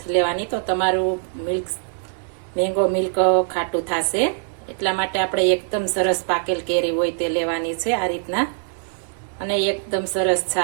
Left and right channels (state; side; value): silent; left; digital silence